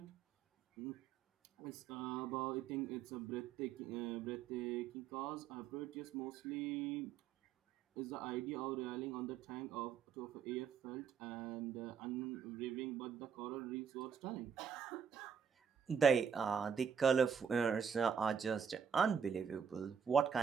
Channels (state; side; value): quieter; left; 7.0 dB